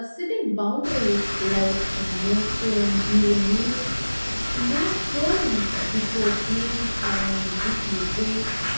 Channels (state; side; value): inverted; both; correlation -1.00